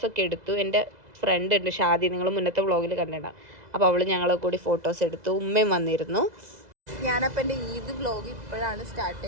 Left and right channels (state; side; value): late; left; 2.0 ms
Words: എടുത്തു. എൻ്റെ ഫ്രണ്ട് ഉണ്ട് ഷാദി, നിങ്ങൾ മുന്നത്തെ വ്ളോഗിൽ കണ്ടിട്ടുണ്ടാകും. അപ്പോൾ അവൾ ഞങ്ങളെ കൂടി ഫോട്ടോസ് എടുത്തു. ഉമ്മയും വന്നിരുന്നു. ഞാനപ്പോൾ എൻ്റെ ഈദ് വ്ളോഗ് ഇപ്പോഴാണ് സ്റ്റാർട്ട്